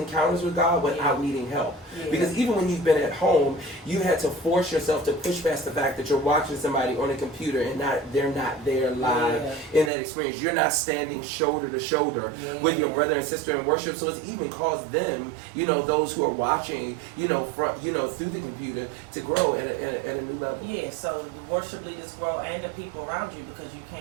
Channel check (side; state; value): left; drops out; at 9.9 s